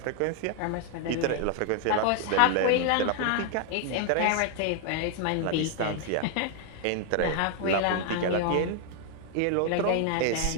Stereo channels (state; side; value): different; both; correlation 0.00